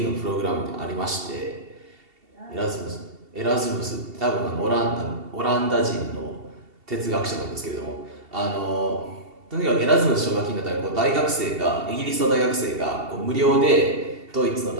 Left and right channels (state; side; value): late; left; 2.7 ms